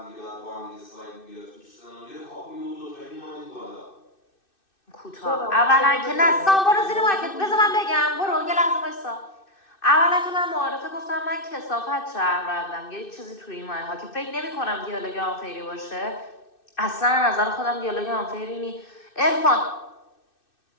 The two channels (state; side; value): late; right; 2.6 ms